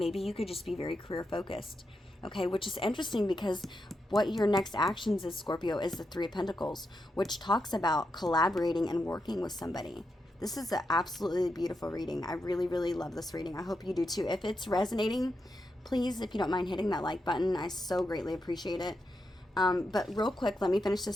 you could just be very career focused, okay, which is interesting because what your next actions is, Scorpio, is the Three of Pentacles, which talks about collaborating and working with somebody. This is an absolutely beautiful reading. I really, really love this reading. I hope you do too. If it's resonating, please, if you don't mind hitting that like button, I so greatly appreciate it. But real quick, let me finish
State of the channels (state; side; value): normal; both; correlation 0.85